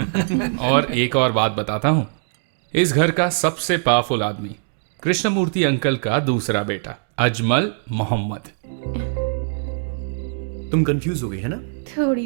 और एक और बात बताता हूँ, इस घर का सबसे पावरफुल आदमी कृष्णमूर्ति अंकल का दूसरा बेटा अजमल मोहम्मद। तुम कंफ्यूज हो गई है ना?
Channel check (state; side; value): silent; left; digital silence